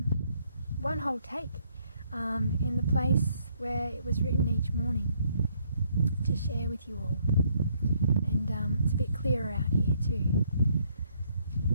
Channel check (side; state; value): both; inverted; correlation -0.69